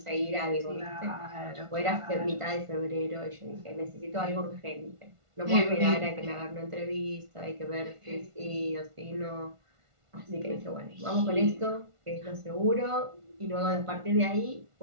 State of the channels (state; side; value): late; left; 1.5 ms